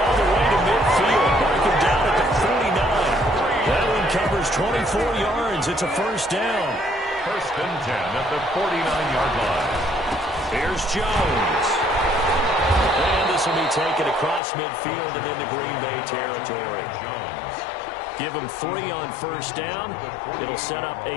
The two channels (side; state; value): right; drops out; at 14.4 s